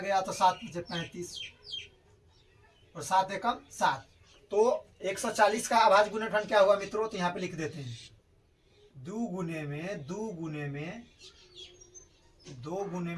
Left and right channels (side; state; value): both; identical; correlation 1.00